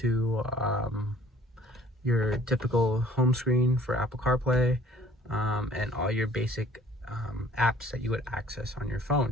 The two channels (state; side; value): normal; both; correlation 0.54